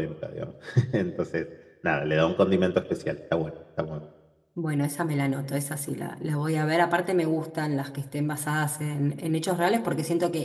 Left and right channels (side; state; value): both; identical; correlation 1.00